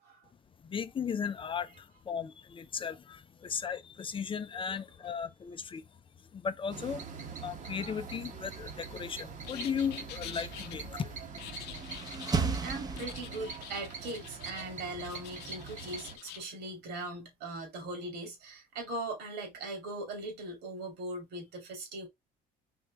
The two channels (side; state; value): both; normal; correlation 0.30